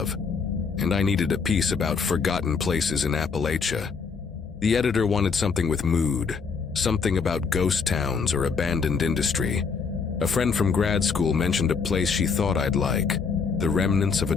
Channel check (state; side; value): quieter; right; 5.4 dB